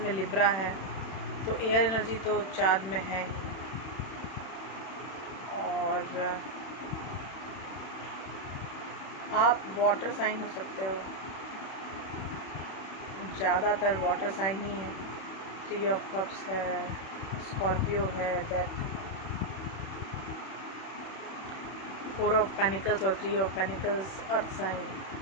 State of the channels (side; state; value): right; late; 31 ms